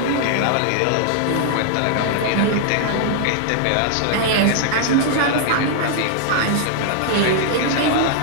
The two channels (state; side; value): different; both; correlation -0.01